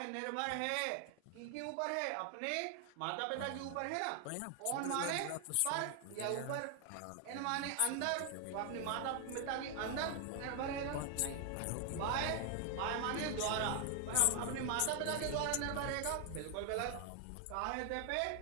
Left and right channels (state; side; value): different; both; correlation 0.00